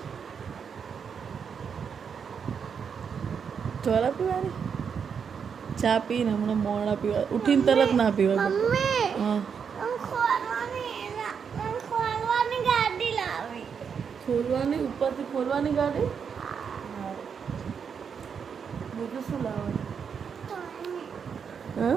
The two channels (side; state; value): left; quieter; 6.7 dB